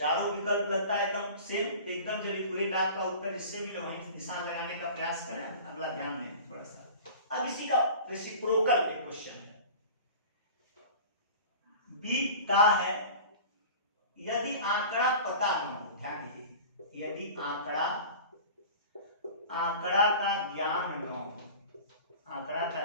विकल्प लगता है एकदम सेम, एकदम जब एक्यूरेट का उत्तर जिससे मिले वहीं निशान लगाने का प्रयास करें। अगला ध्यान दें थोड़ा सा, अब इसी का रेसिप्रोकल एक क्वेश्चन है, बी का है, यदि आंकड़ा पता न हो, ध्यान दीजिए, यदि आंकड़ा का ज्ञान न हो, आंकड़ा का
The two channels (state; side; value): inverted; both; correlation -0.38